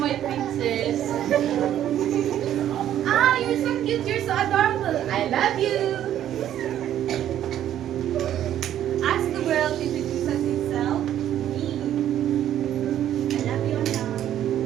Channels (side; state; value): left; quieter; 11.3 dB